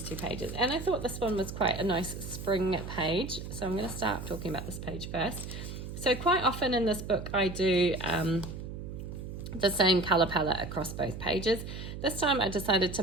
2 pages, and I thought this one was quite a nice spring page, so I'm going to start talking about this page first. So quite often in this book I do the same colour palette across both pages. This time I decided to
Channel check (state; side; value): noise; right; hum, 8 dB below the sound